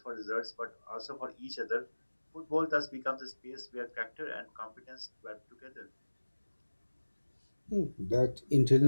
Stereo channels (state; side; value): inverted; both; correlation -1.00